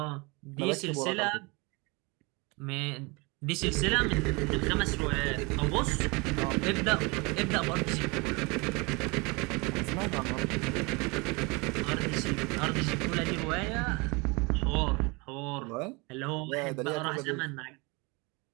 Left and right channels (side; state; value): left; quieter; 27.6 dB